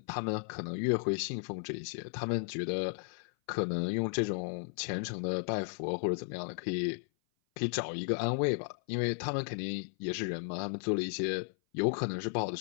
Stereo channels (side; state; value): right; silent; 55 dB below the other